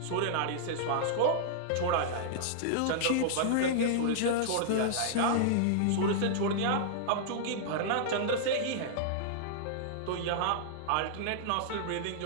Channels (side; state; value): both; different; correlation -0.02